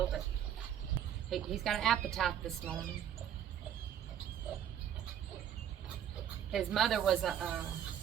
but he's got an appetite this morning. His mother was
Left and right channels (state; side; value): quieter; left; 9.9 dB